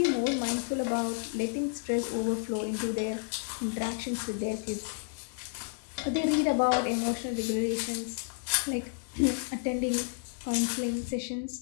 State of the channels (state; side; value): silent; right; 57 dB below the other